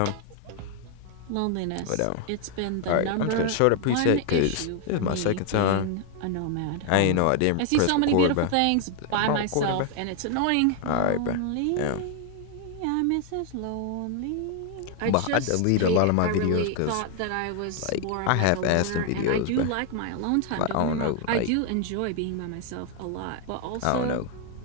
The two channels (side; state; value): both; different; correlation 0.00